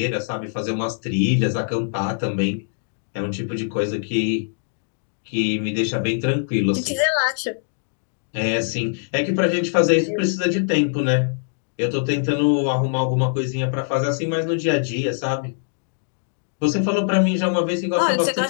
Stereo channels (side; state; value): right; silent; digital silence